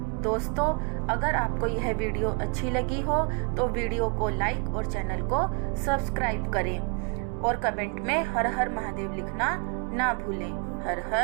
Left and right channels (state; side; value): quieter; left; 35.4 dB